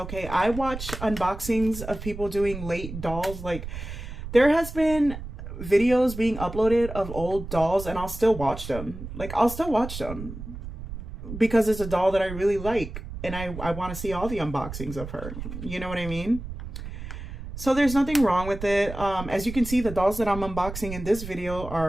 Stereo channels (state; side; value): noise; right; rumble, 10 dB below the sound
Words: I watch unboxings of people doing late dolls. Like, there has been videos being uploaded of old dolls and I'll still watch them. Like, I'll still watch them because it's a doll that I really like and I want to see all the unboxings of her. You know what I mean? So there's nothing wrong with it. As you can see, the dolls that I'm unboxing in this video